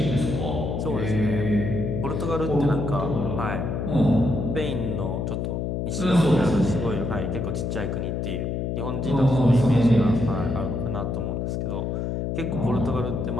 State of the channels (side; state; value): left; noise; hum, 2 dB below the sound